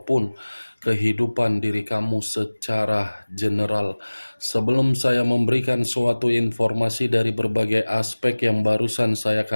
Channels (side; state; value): both; inverted; correlation -1.00